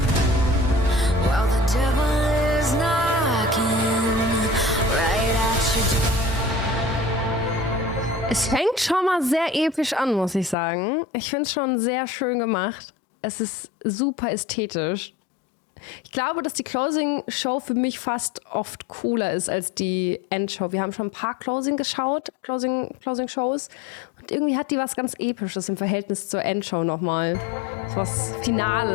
while the devil is knocking right at your door. Es fängt schon mal sehr episch an, muss ich sagen. Ich finde es schon sehr schön gemacht. Es ist super ästhetisch. Ich glaube, dass die Closing-Show für mich fast oft cooler ist als die Endshow. Wir haben schon ein paar Closing-Shows. Und irgendwie hat die was ganz Episches im Verhältnis zur Endshow nochmal. So was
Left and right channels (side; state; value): right; drops out; at 10.6 s